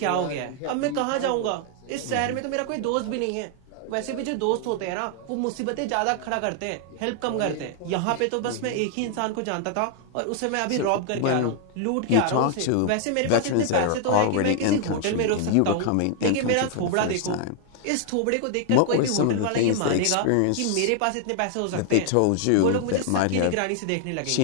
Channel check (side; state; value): both; different; correlation 0.00